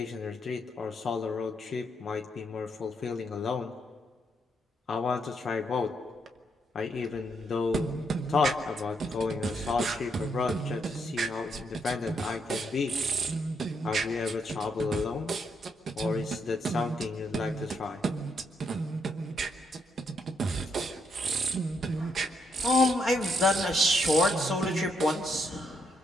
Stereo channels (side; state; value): both; normal; correlation 0.76